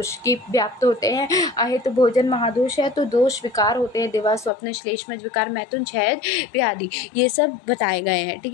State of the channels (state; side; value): drops out; right; at 4.5 s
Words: की व्याप्त होते हैं। अहित भोजन महादोष है तो दोष विकार होते हैं, दिवा स्वप्न, श्लेष्मज विकार, मैथुन, क्षय व्याधि, ये सब बताए गए हैं। ठीक